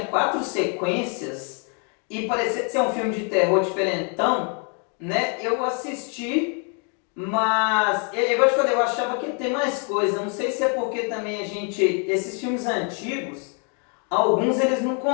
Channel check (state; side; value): quieter; right; 38.8 dB